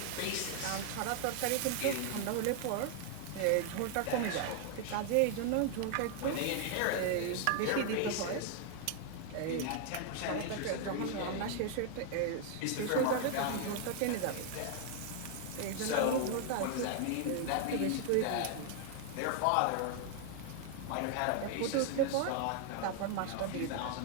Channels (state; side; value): different; both; correlation 0.00